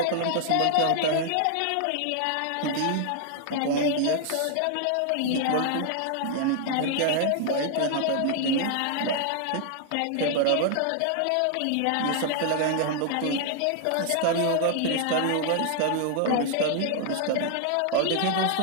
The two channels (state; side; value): different; both; correlation 0.00